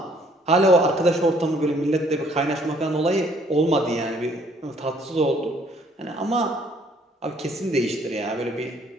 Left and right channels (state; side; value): normal; both; correlation 0.62